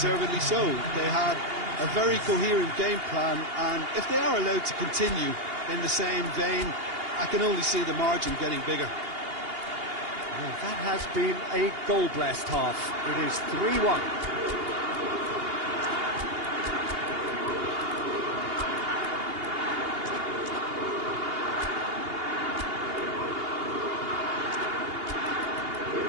so. They had a very coherent game plan, and if they are allowed to continue in the same vein, I can only see the margin getting bigger. Well, that has been a goal-blessed half. It is 3-1.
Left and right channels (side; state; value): left; late; 2.8 ms